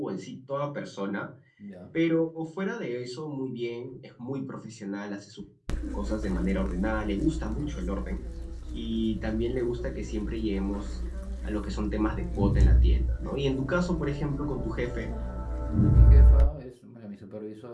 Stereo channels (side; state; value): both; identical; correlation 1.00